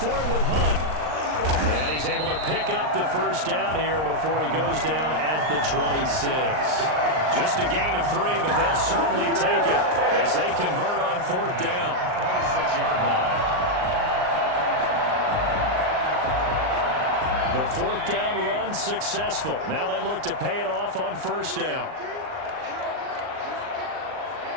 it with Hunt. And he's able to pick up the first down here before he goes down at the 26. Just a gain of 3, but they'll certainly take it as they convert on 4th down. 26-yard line. The 4th down run successful. Now they look to pay it off on first down.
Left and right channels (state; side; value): late; left; 39 ms